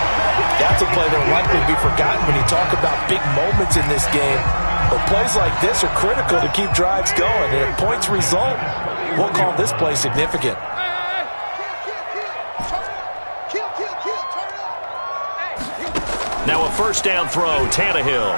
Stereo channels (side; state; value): both; inverted; correlation -1.00